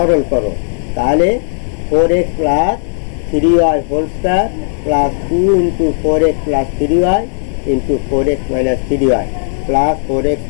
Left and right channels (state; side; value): silent; right; digital silence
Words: করো, তাহলে 4x plus 3y whole square plus 2 into 4x plus 3y into 4x minus 3y plus 4x